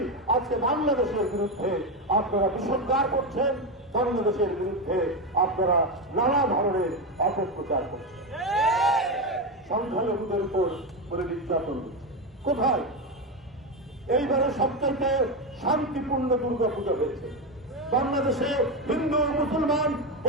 আজকে বাংলাদেশের বিরুদ্ধে আপনারা বিষোদ্গার করছেন, বাংলাদেশের বিরুদ্ধে আপনারা নানা ধরনের অপপ্রচার করছেন, সংখ্যালঘুদের উপর বলে নির্যাতন করছে। কোথায়? এইবারে সবচাইতে শান্তিপূর্ণ দুর্গাপূজা হয়েছে। বাংলাদেশে হিন্দু, মুসলমান,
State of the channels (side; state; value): both; normal; correlation 0.12